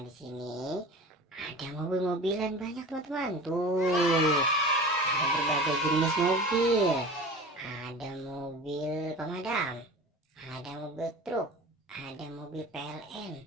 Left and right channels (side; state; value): both; normal; correlation 0.37